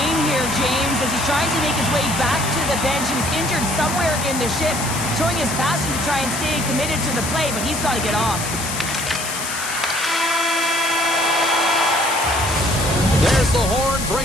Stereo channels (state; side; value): noise; left; hiss, 5 dB below the sound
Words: here, James, as he's trying to make his way back to the bench. He was injured somewhere in the shift, showing his passion to try and stay committed to the play, but he's got to get off. There's the horn,